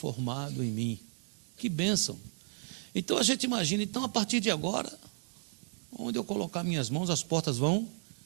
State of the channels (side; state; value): left; silent; 56 dB below the other